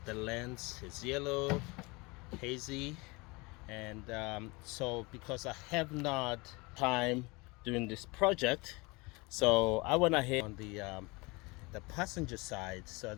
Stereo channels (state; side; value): quieter; right; 25.9 dB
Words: lens is yellow, hazy, and so because I have not time doing this project, so I went ahead on the passenger side so